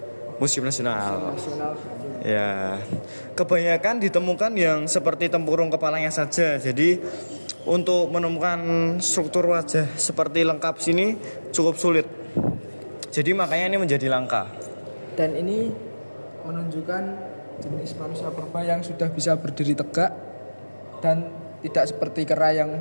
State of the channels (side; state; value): both; inverted; correlation -1.00